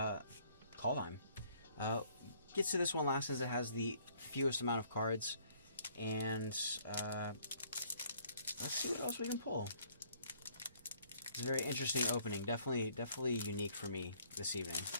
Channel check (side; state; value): both; inverted; correlation -0.62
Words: Gets to this one last as it has the fewest amount of cards. And let's see what else we can pull. It's a very interesting opening. Definitely unique for me this evening.